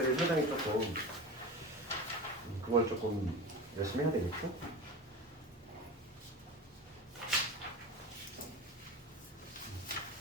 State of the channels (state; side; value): normal; both; correlation 0.30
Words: 상당히 조금 그걸 조금 열심히 해야 되겠죠?